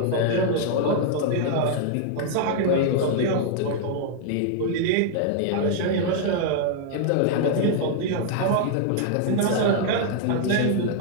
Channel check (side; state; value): both; different; correlation 0.00